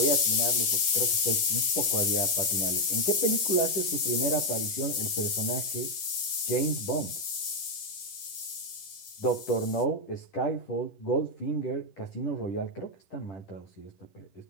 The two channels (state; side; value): late; right; 10 ms